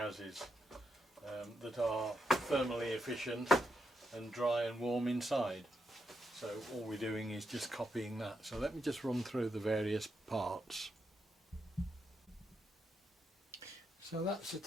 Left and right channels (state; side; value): normal; both; correlation 0.82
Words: that are thermally efficient and dry and warm inside. So all we're doing is just copying that. So let me just run through the various parts. So that's a